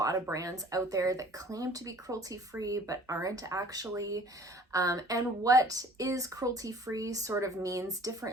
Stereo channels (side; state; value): both; normal; correlation 0.50